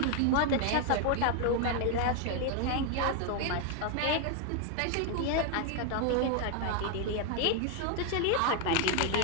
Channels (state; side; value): different; both; correlation 0.01